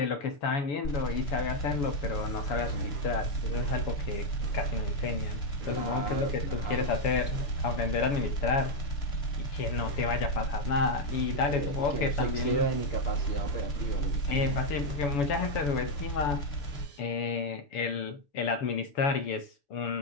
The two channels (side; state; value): right; late; 7.0 ms